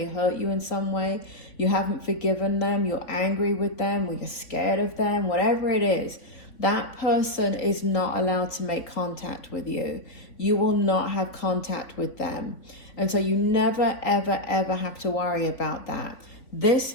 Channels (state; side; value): late; right; 3.5 ms